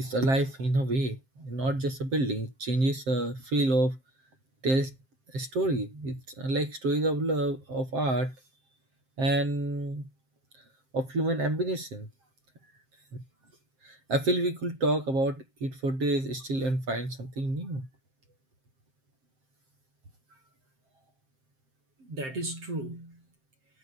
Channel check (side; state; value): left; late; 7.6 ms